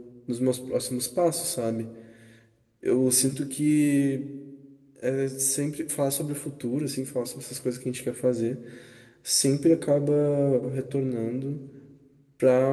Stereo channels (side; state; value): both; identical; correlation 1.00